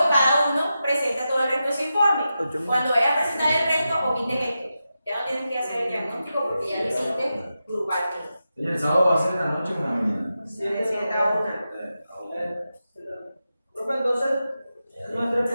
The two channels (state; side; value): inverted; both; correlation -0.90